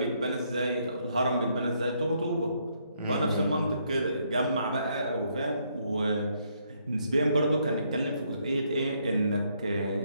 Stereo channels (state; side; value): inverted; both; correlation -0.73